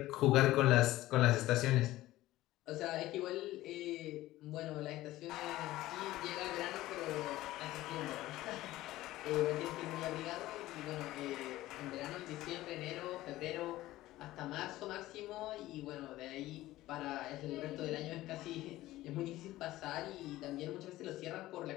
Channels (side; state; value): right; quieter; 16.3 dB